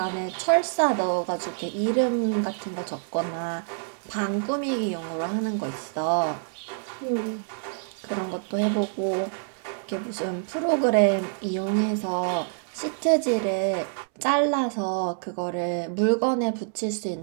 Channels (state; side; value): silent; left; 61 dB below the other